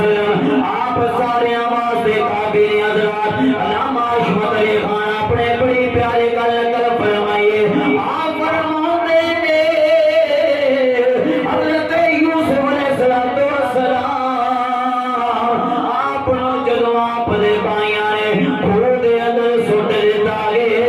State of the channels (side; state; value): both; identical; correlation 1.00